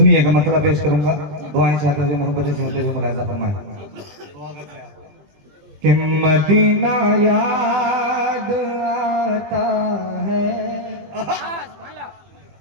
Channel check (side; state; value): left; late; 20 ms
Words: मतलब पेश करूंगा। दुआएं चाहते हुए, मोहब्बतें चाहते हुए मुलाहिजा फरमाएं कि मदीना याद आता है।